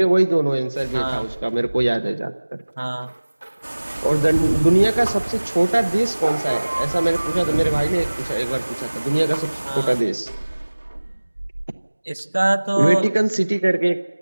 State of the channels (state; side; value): inverted; both; correlation -1.00